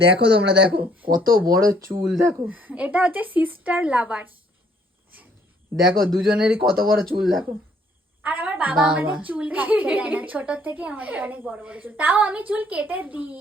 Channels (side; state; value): both; normal; correlation 0.64